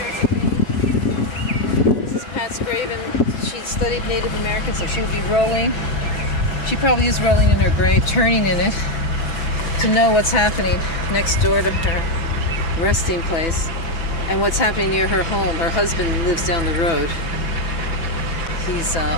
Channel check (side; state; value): right; late; 6.1 ms